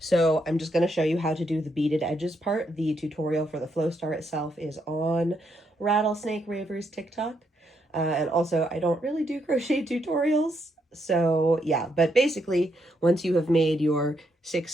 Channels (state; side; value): normal; both; correlation 0.77